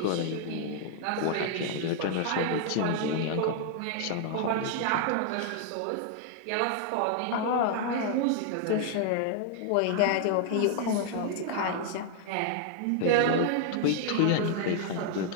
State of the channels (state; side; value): different; both; correlation 0.00